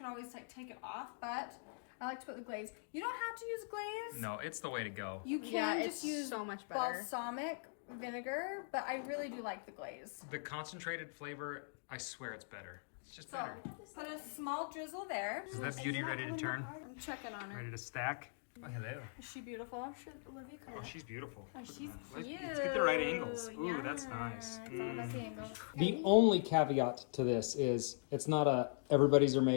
always like take it off, but I like to put the glaze. You don't have to use glaze. No, it's the way to go. You can Yeah, just it's use so much better. balsamic vinegar, but I really do like the glaze. The concentrated flavor, I swear it's better. It's just So, better. put a small drizzle there. Is that beauty ready to turn? I'm checking on her. Ready to stack? Oh, hello. Is she beautiful? Oh, she's beautiful. She's Let's cute. get the right angles. Ooh, that's nice. Let's see angles. The only caveat to this is it's not a everybody's are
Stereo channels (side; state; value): right; silent; digital silence